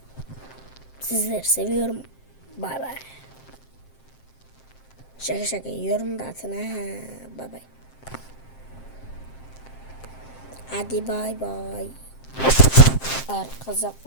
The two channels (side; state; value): right; late; 7.6 ms